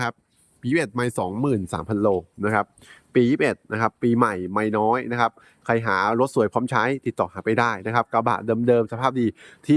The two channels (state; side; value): identical; both; correlation 1.00